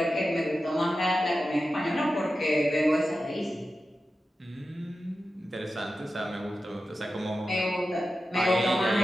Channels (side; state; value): both; normal; correlation 0.92